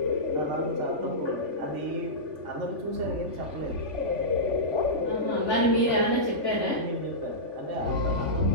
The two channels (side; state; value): left; late; 3.4 ms